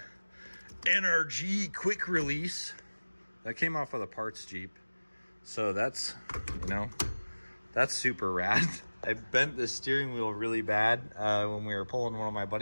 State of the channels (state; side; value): inverted; both; correlation -1.00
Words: NRG quick release that came off of the parts Jeep. So that's, you know, that's super rad. I bent the steering wheel really bad when we were pulling one of my